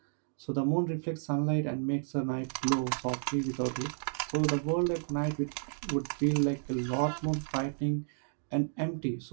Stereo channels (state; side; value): silent; left; digital silence